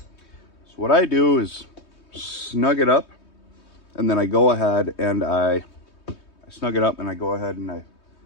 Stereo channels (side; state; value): right; late; 3.2 ms